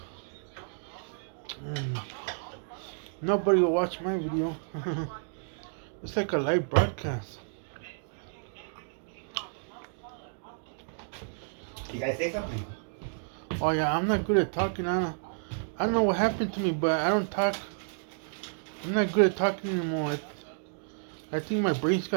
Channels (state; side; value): silent; left; digital silence